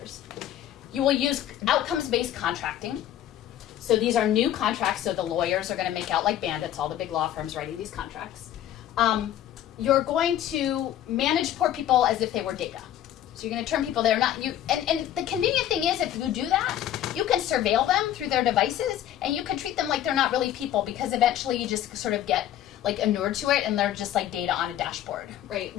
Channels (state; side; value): quieter; right; 11.7 dB